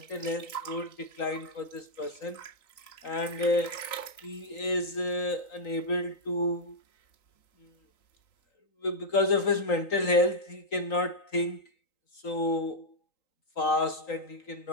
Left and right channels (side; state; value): right; late; 3.9 ms